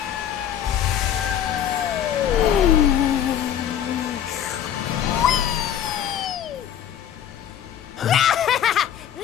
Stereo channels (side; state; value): right; quieter; 10.0 dB